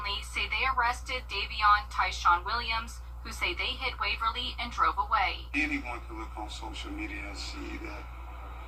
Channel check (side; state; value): both; identical; correlation 1.00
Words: say they arrested Davion Tyshawn Williams, who say they hit Waverly and drove away. Anyone can look on social media and see that